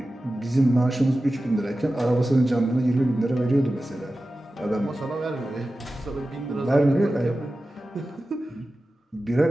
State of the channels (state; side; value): normal; both; correlation 0.94